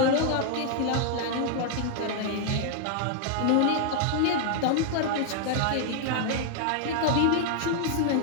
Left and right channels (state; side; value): different; both; correlation 0.00